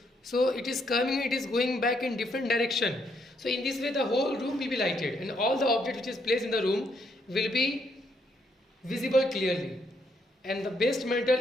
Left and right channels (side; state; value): both; normal; correlation 0.74